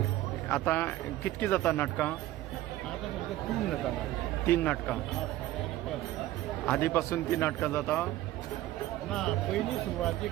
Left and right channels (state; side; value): quieter; left; 15.1 dB